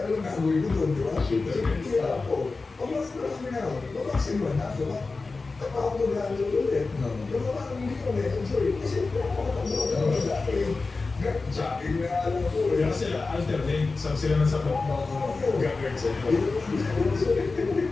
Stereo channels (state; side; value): quieter; right; 3.9 dB